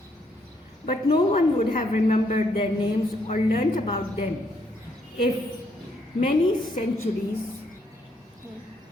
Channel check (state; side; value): normal; both; correlation 0.72